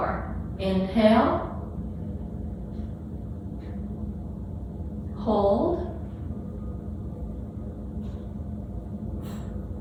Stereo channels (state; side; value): identical; both; correlation 1.00